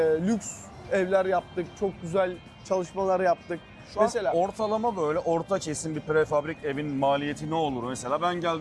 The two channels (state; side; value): identical; both; correlation 1.00